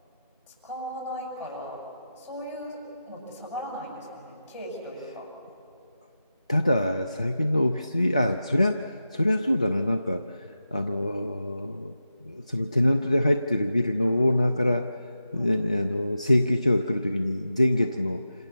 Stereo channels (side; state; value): both; inverted; correlation -0.91